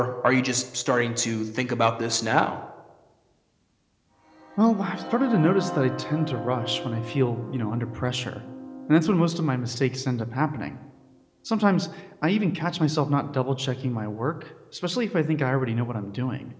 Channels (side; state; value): both; identical; correlation 1.00